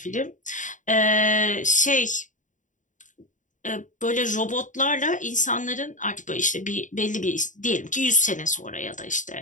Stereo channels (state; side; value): late; right; 0.37 ms